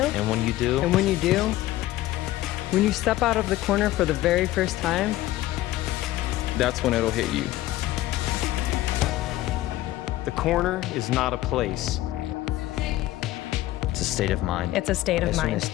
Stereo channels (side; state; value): right; quieter; 15.9 dB